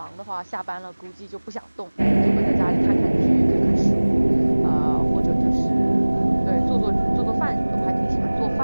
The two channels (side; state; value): both; inverted; correlation -1.00